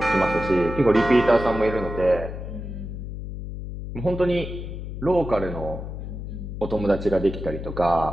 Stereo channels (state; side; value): noise; left; hum, 8 dB below the sound